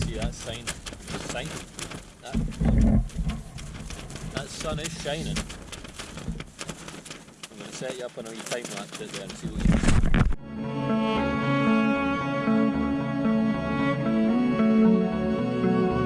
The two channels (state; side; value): identical; both; correlation 1.00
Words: see, that that sun is shining. I'm going to set you up on a wee time lapse out there and see what you can see.